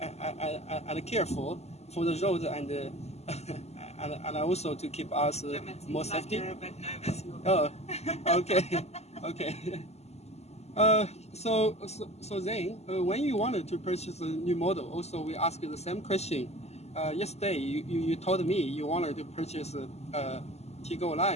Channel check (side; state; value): right; late; 0.31 ms